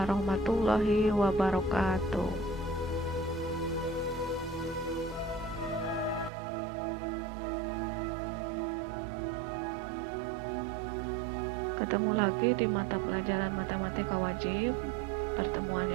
wabarakatuh. Ketemu lagi di mata pelajaran matematika wajib, pertemuan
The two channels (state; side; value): drops out; left; at 6.3 s